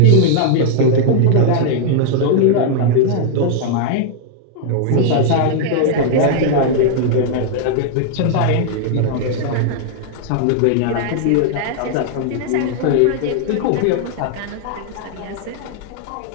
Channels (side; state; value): both; different; correlation -0.01